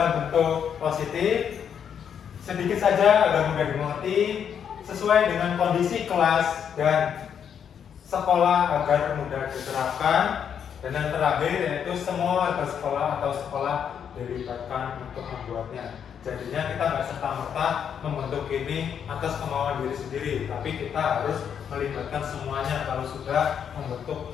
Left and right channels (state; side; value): quieter; right; 8.0 dB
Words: bentuk positif, sedikit saja agar mudah dimengerti, sesuai dengan kondisi kelas dan sekolah agar mudah diterapkan. Dan yang terakhir yaitu semua warga sekolah atau sekolah dilibatkan untuk membuatnya. Jadinya kita nggak serta-merta membentuk ini atas kemauan diri sendiri, tapi kita harus melibatkan semuanya kalau sudah membentuk